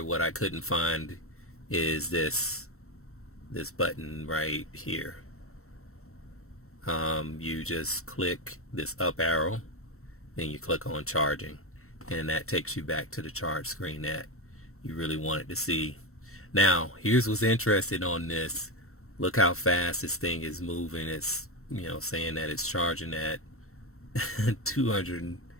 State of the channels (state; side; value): late; right; 0.63 ms